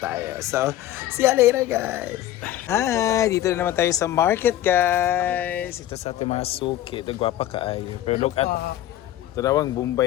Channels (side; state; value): right; quieter; 13.2 dB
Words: tayo. So see you later guys. Hi, dito na naman tayo sa market guys. Ito sa ating mga suki. Ito gwapa kaayo. Pero look at tarawang